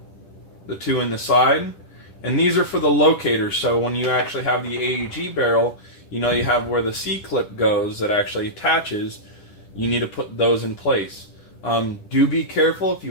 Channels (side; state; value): right; late; 10 ms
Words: the two in the side. And these are for the locators, so when you actually have the AEG barrel, you know you have where the C-clip goes that actually attaches. You need to put those in place. Do be careful if